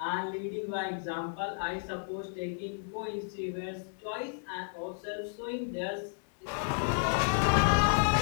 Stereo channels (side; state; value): right; silent; digital silence